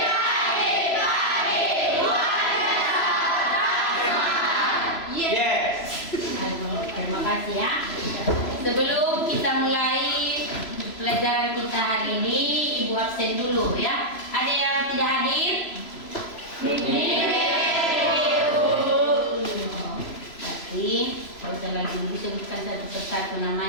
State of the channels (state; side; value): late; right; 3.0 ms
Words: Luar biasa. Yes. Terima kasih ya. Sebelum kita mulai pelajaran kita hari ini, Ibu absen dulu ya. Ada yang tidak hadir? Tidak usah lagi disebutkan satu persatu